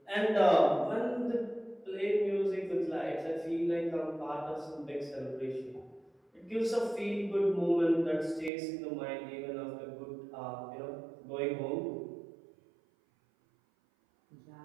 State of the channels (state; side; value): drops out; left; at 8.5 s